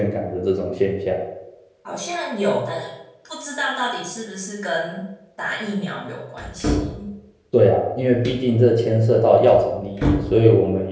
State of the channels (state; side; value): identical; both; correlation 1.00